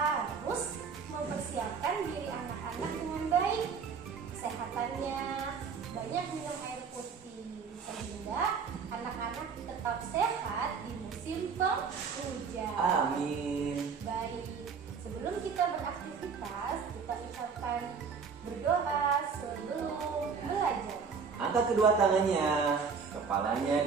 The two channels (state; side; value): quieter; left; 5.8 dB